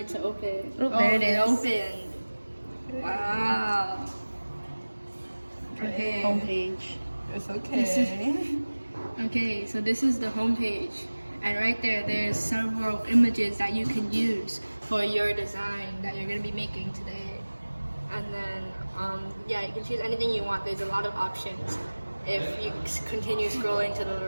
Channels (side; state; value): both; inverted; correlation -1.00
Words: to open. Oh, there it is. Opened. Wow. Okay. Homepage. It's okay. Okay, so this is the homepage. And right there, there's several images that you can use for your design that you're going to be making today. And then, yeah, you can choose anything you want. There's a lot of options. If you continue scrolling to the